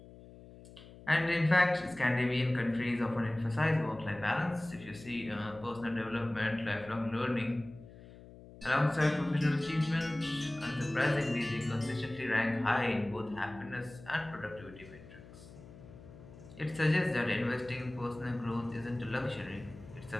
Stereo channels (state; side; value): noise; left; hum, 18 dB below the sound